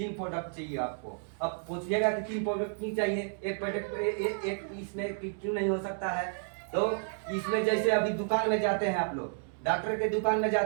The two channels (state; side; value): silent; left; digital silence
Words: प्रोडक्ट चाहिए आपको। अब पूछिएगा कि 3 प्रोडक्ट क्यों चाहिए, एक प्रोडक्ट एक इसमें क्यों नहीं हो सकता है। तो इसमें जैसे अभी दुकान में जाते हैं आप लोग, डॉक्टर के दुकान में